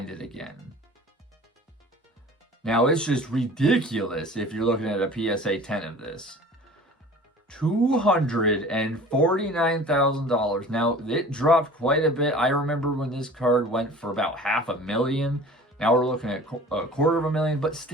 it again. Now, it's just ridiculous if you're looking at a PSA 10 of this. $249,000. Now, it dropped quite a bit. I remember when this card went for about $500,000. Now we're looking at $250,000, but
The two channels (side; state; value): both; normal; correlation 0.43